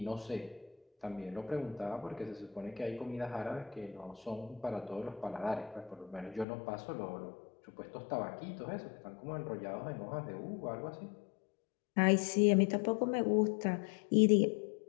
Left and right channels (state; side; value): drops out; right; at 6.5 s